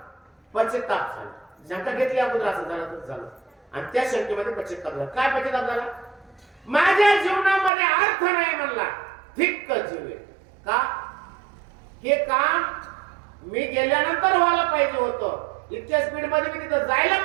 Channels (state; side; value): drops out; left; at 7.7 s